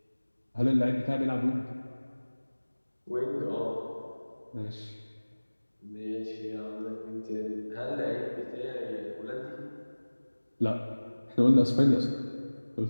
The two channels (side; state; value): both; inverted; correlation -1.00